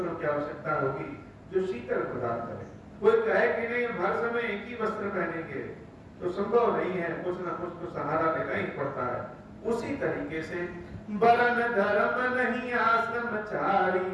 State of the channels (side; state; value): both; identical; correlation 1.00